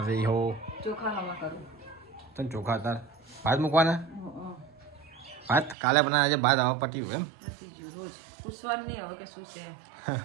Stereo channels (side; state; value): left; drops out; at 5.8 s